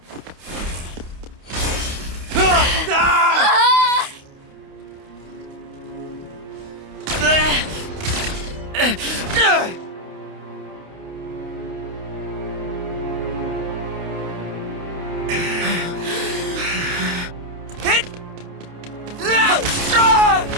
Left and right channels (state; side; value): late; left; 28 ms